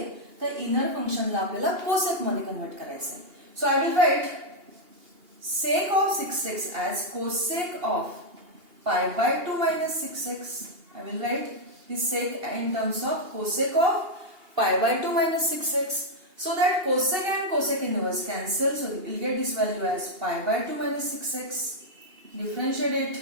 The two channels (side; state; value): left; late; 2.8 ms